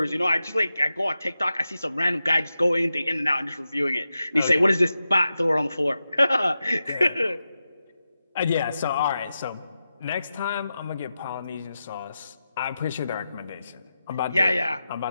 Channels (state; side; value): inverted; both; correlation -0.91